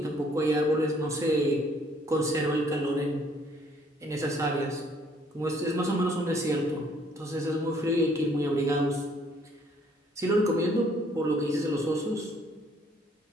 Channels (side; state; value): both; normal; correlation 0.63